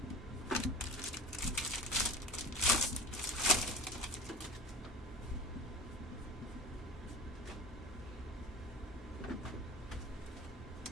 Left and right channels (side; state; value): both; normal; correlation 0.36